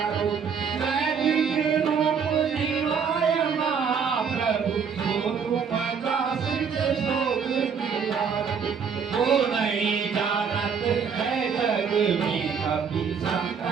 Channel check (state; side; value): quieter; left; 6.5 dB